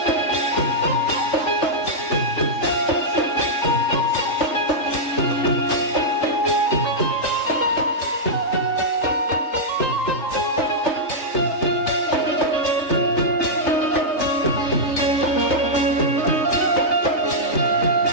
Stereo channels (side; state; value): right; late; 3.3 ms